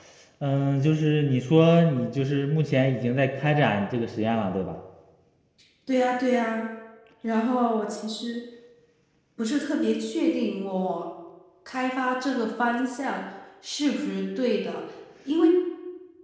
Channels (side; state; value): both; identical; correlation 1.00